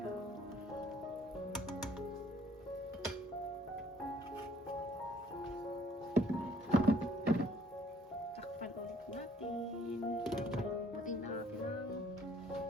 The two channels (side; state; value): both; normal; correlation 0.61